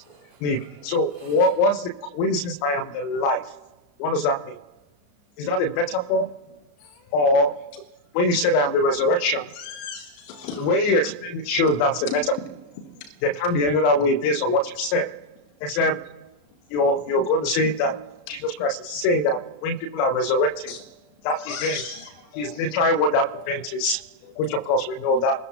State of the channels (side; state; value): right; late; 34 ms